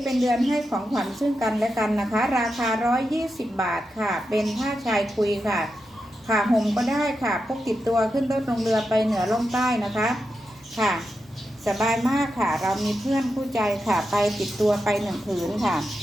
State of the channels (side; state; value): both; normal; correlation 0.88